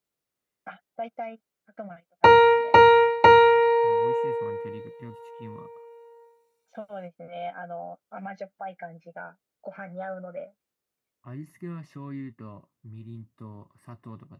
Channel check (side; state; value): both; identical; correlation 1.00